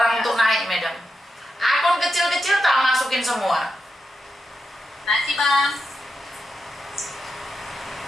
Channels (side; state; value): both; normal; correlation 0.88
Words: untuk naik, madam. Akun kecil-kecil tak masukin semua. Nanti bang.